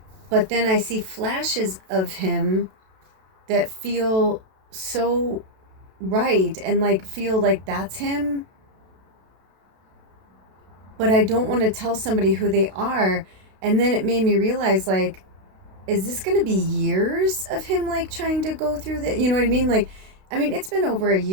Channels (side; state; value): left; late; 32 ms